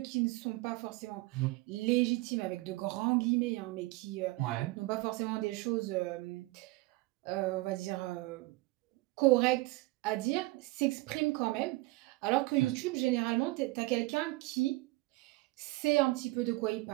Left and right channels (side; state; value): left; quieter; 21.9 dB